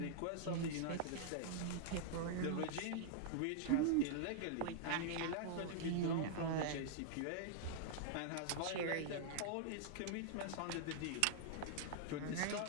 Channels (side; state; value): both; different; correlation -0.01